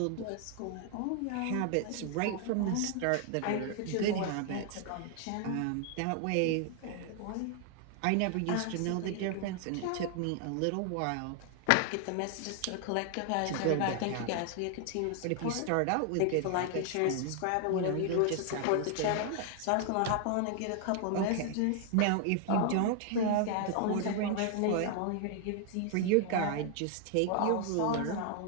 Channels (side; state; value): both; different; correlation 0.00